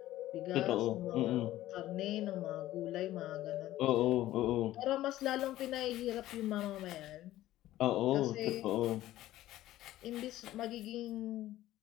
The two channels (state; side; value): quieter; right; 14.7 dB